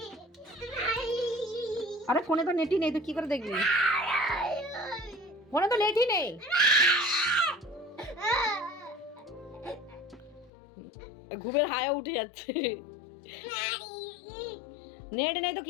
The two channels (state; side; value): drops out; right; at 10.5 s